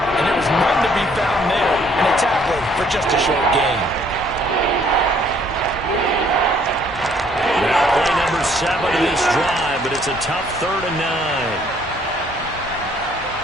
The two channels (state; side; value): normal; both; correlation 0.63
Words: And there was none to be found there. And a tackle for just a short gain. Now play number 7 of this drive, but it's a tough 3rd and